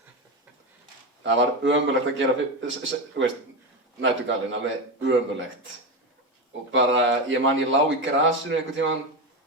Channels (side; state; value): both; normal; correlation 0.16